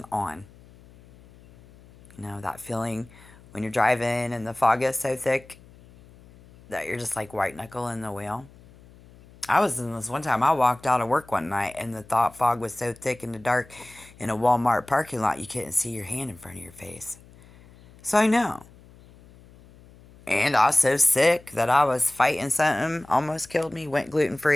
on. That feeling when you're driving and the fog is so thick that you're just like white knuckling the wheel. I was in this one time. I walked out of work one night and the fog was so thick in the dark in a Walmart parking lot you couldn't see your hand in front of your face. So I know. And I was so sick that I was fighting something, almost killed me, went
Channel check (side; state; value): left; noise; hum, 24 dB below the sound